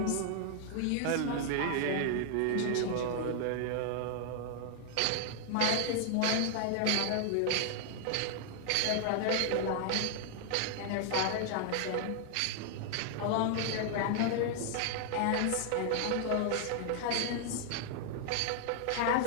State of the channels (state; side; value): different; both; correlation 0.00